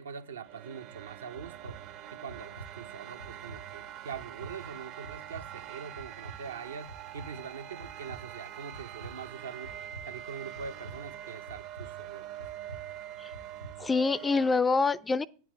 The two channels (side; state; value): both; normal; correlation 0.62